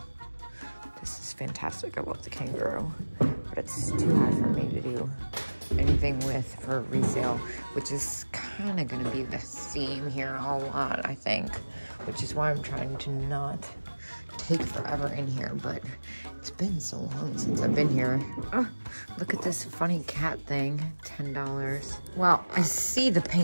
This is fantastic. I love the kangaroo. But it's too high for me to do anything with for resale, which is kind of going to be the theme here a lot, I think. Which is why I'm trying to not take forever in here, but it's been so long since I've been here. Oh, look at this funny cat thing, $10. Well, I see the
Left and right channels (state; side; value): inverted; both; correlation -1.00